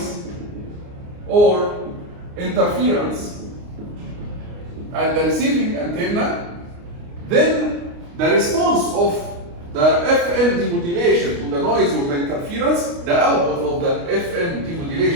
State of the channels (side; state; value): left; late; 29 ms